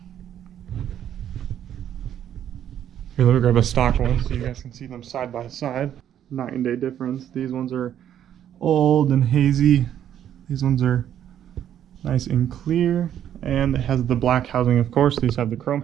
Here, let me grab a stock one so you guys can see them side by side. Night and day difference. These ones are old and hazy. These ones are nice and clear. And it has the black housing, of course. These have the chrome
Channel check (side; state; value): left; quieter; 10.3 dB